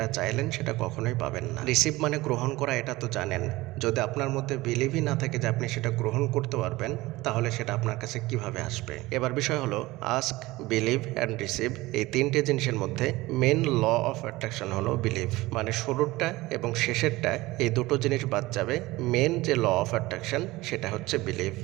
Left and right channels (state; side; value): quieter; left; 19.6 dB